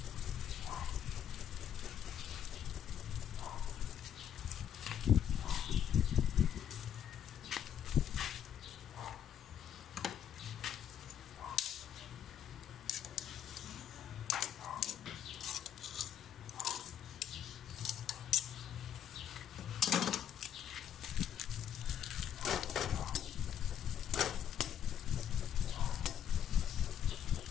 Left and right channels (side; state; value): right; quieter; 9.4 dB